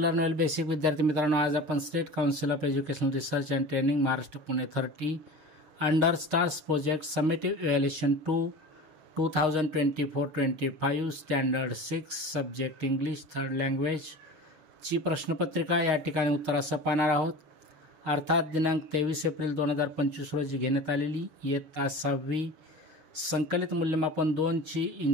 learn well basic. विद्यार्थी मित्रांनो, आज आपण state council of educational research and training Maharashtra Pune 30 under stars project summative evaluation 2024-25 standard 6 subject English third language ची प्रश्नपत्रिका या ठिकाणी उत्तरासह पाहणार आहोत. अर्थात दिनांक 23 एप्रिल 2025 रोजी घेण्यात आलेली इयत्ता 6वी संकलित मूल्यमापन 2 ची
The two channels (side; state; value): left; late; 6.4 ms